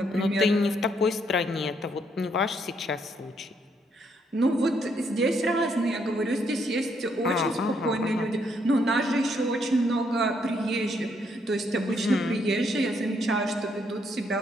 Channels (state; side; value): normal; both; correlation 0.73